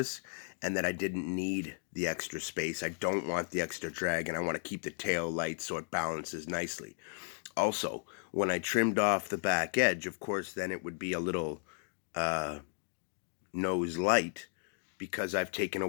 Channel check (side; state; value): right; silent; digital silence